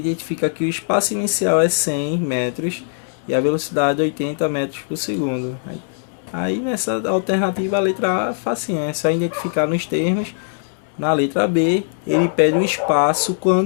que o espaço inicial é 100 metros e a velocidade é 80 metros por segundo. Aí nessa alternativa a letra A é facinho, é só identificar nos termos. Na letra B, ele pede o espaço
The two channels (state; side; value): silent; right; 66 dB below the other